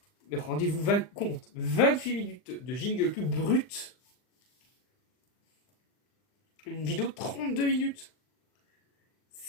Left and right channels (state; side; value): late; right; 39 ms